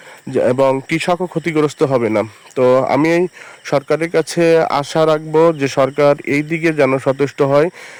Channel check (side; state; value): both; identical; correlation 1.00